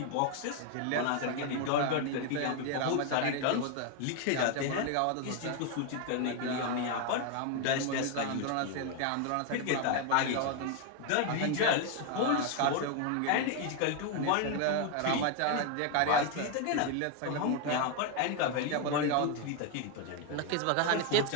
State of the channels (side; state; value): both; different; correlation 0.01